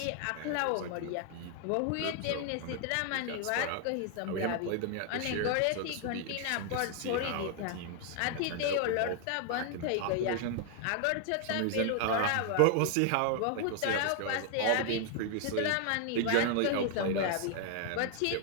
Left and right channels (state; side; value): different; both; correlation 0.00